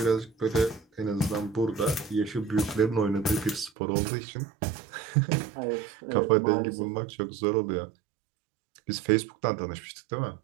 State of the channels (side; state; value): left; drops out; at 3.7 s